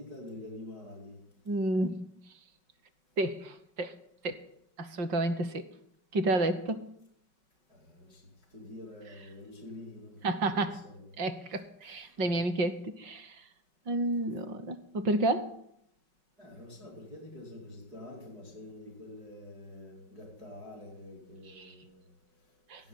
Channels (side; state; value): left; late; 5.3 ms